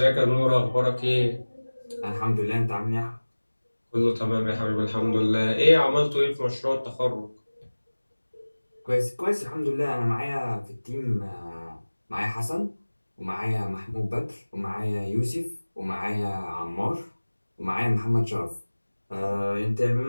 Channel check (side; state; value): both; inverted; correlation -1.00